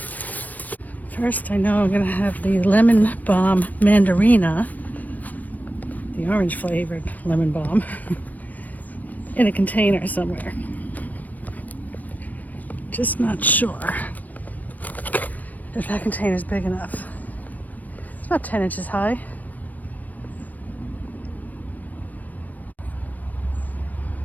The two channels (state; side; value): late; right; 0.080 ms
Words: First, I know I'm gonna have the lemon balm mandarina, the orange flavored lemon balm, in a container somewhere. Just not sure if that container is big enough. It's about 10 inches high.